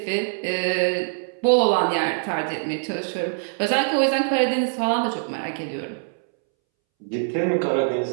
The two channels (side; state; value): left; silent; 63 dB below the other